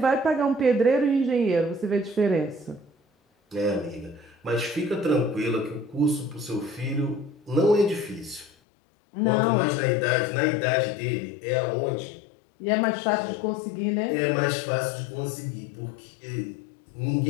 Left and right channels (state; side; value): drops out; right; at 8.5 s